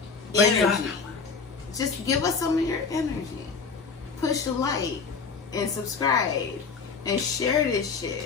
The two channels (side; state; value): right; quieter; 5.1 dB